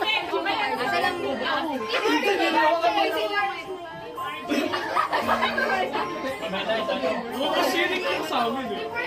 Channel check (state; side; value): identical; both; correlation 1.00